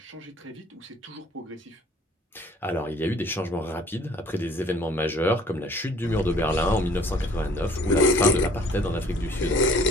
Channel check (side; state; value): both; normal; correlation 0.54